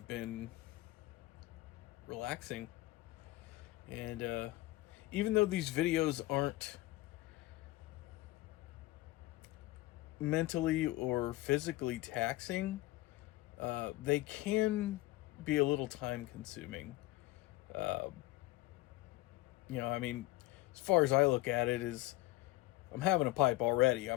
been relaxing. And even though these videos aren't mentally or physically taxing, they can be a little time consuming. I mean, as far as I look at it, is I'm having a pipe already. I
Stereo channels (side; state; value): right; quieter; 18.3 dB